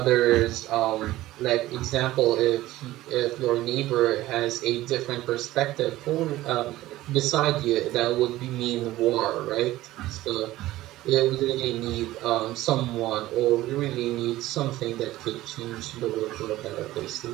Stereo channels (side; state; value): left; quieter; 16.3 dB